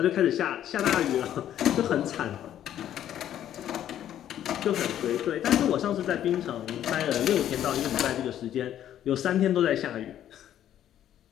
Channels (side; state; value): right; quieter; 11.1 dB